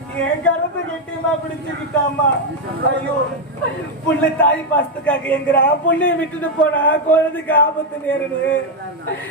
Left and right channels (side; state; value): both; normal; correlation 0.03